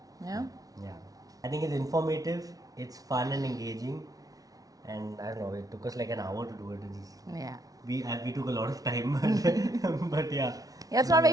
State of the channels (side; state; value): left; late; 0.18 ms